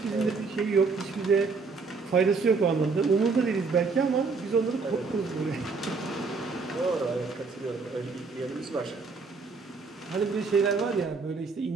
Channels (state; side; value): quieter; left; 4.5 dB